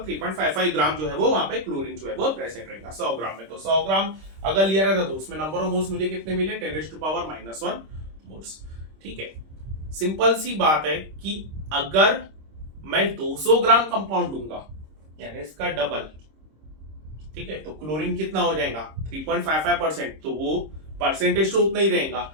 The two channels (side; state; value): left; late; 26 ms